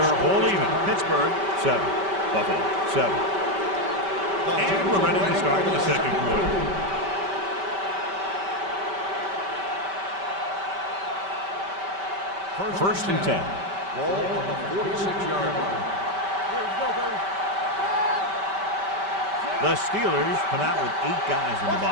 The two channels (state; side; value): late; left; 5.2 ms